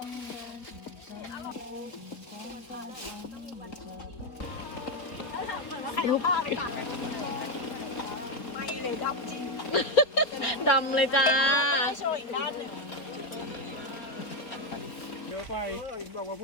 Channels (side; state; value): right; late; 4.3 ms